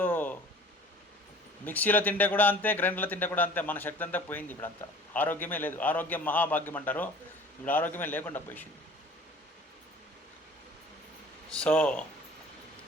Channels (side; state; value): both; normal; correlation 0.46